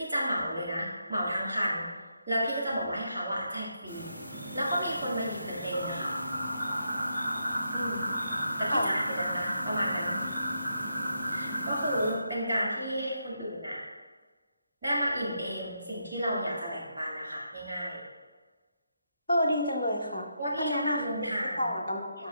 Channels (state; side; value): inverted; both; correlation -0.81